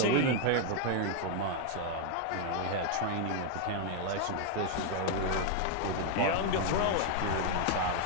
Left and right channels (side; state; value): both; different; correlation 0.00